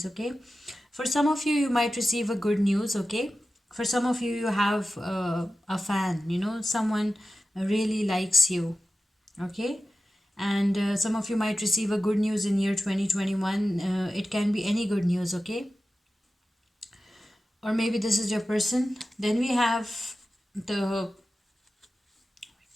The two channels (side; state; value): both; normal; correlation 0.94